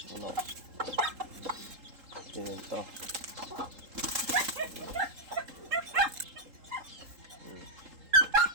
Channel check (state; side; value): late; left; 3.8 ms